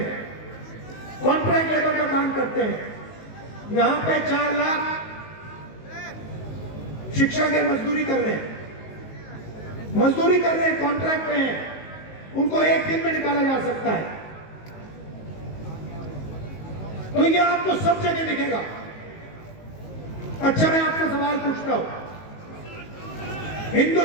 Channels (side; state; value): right; late; 19 ms